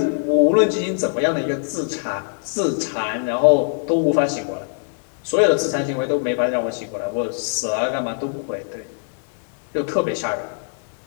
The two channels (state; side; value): silent; right; digital silence